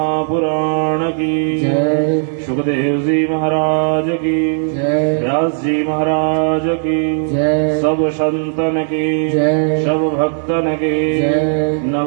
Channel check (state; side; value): silent; left; digital silence